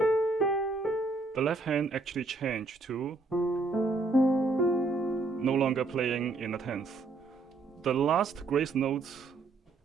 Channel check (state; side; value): quieter; left; 3.5 dB